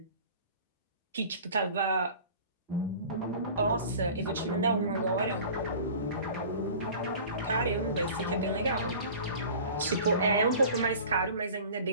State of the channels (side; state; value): both; inverted; correlation -0.42